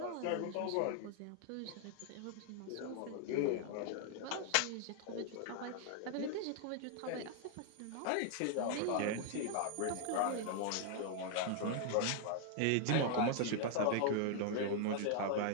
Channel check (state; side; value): different; both; correlation 0.00